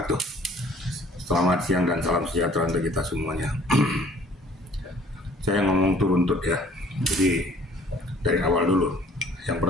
Selamat siang dan salam sejahtera untuk kita semuanya. Saya ngomong turuntut ya, jadi dari awal dulu. Yang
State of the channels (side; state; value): both; normal; correlation 0.55